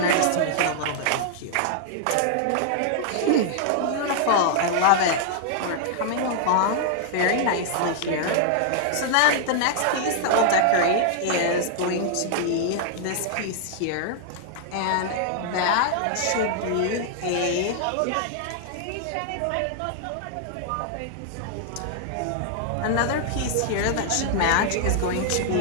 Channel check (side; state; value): both; different; correlation -0.01